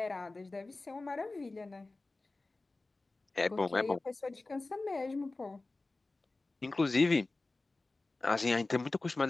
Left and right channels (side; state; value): right; quieter; 3.3 dB